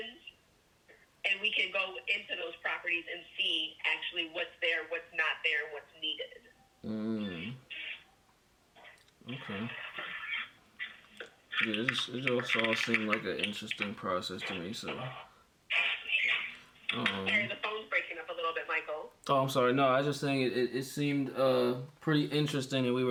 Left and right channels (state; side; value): identical; both; correlation 1.00